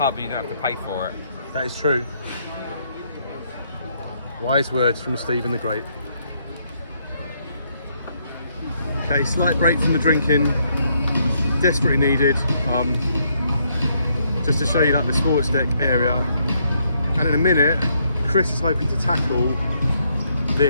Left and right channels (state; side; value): inverted; both; correlation -0.73